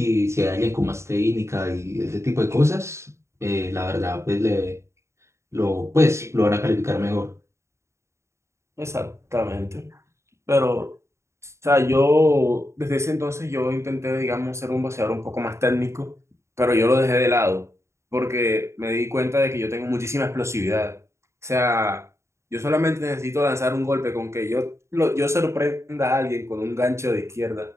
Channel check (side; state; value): left; late; 0.14 ms